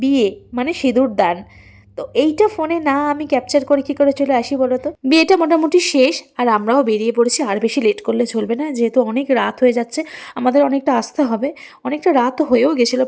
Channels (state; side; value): identical; both; correlation 1.00